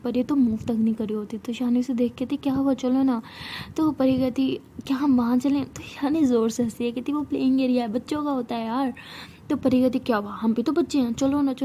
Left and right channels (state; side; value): identical; both; correlation 1.00